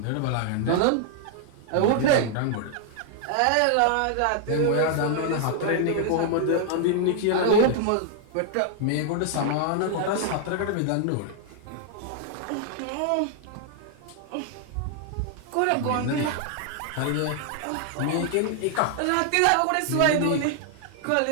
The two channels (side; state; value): both; different; correlation 0.00